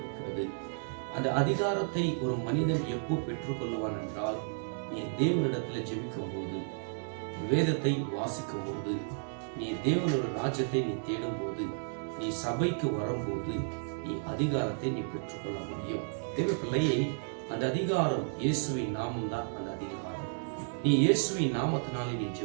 அந்த அதிகாரத்தை ஒரு மனிதன் எப்போ பெற்றுக்கொள்ளுவான் என்றால், நீ தேவனிடத்தில் ஜெபிக்கும் போது, வேதத்தை வாசிக்கும் போது, நீ தேவனோட ராஜ்யத்தை நீ தேடும் போது, நீ சபைக்கு வரும்போது நீ அதிகாரத்தை நீ பெற்றுக்கொள்ள முடியும். தேவ பிள்ளையை, அந்த அதிகாரம் இயேசுவின் நாமம் தான். அந்த அதிகாரம் நீ இயேசுவின் நாமத்தினாலே நீ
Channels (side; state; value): left; silent; digital silence